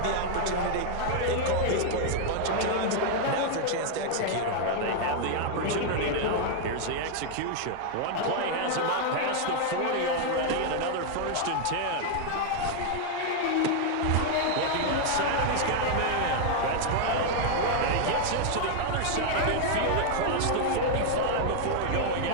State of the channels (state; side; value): different; both; correlation 0.00